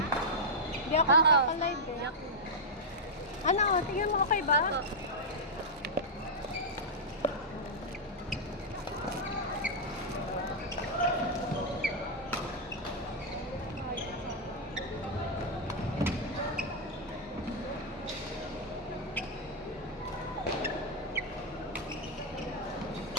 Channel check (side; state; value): both; normal; correlation -0.05